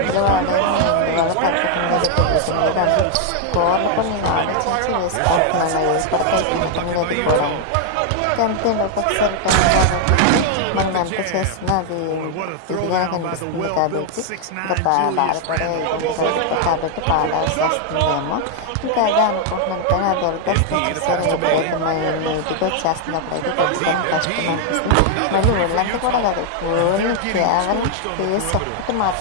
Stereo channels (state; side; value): different; both; correlation 0.00